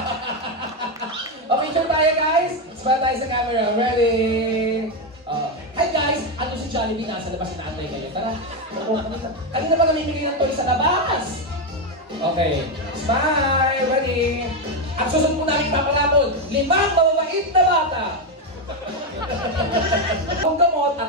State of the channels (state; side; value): normal; both; correlation 0.08